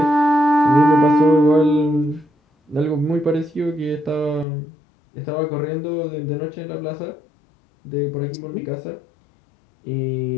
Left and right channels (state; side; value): drops out; right; at 4.5 s